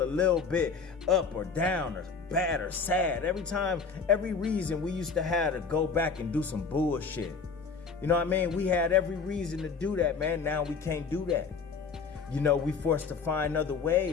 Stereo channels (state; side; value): quieter; right; 5.3 dB